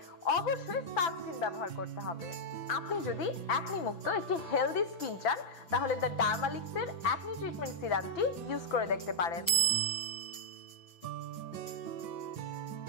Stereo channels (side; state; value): right; late; 6.0 ms